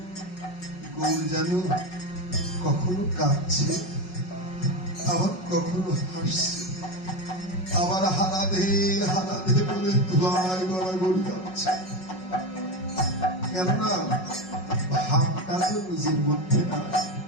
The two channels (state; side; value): late; right; 5.4 ms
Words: গৌর যেন কখনো কাঁদছে, আবার কখনো হাসছে, আবার হারাধে হারাধে বলে ধুলায় গড়াগড়ি যাচ্ছে। কেননা ভাবটা তো নিজের মধ্যে না,